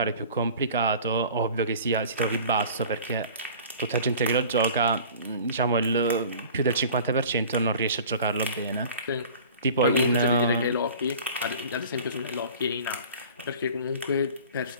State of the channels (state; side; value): inverted; both; correlation -0.44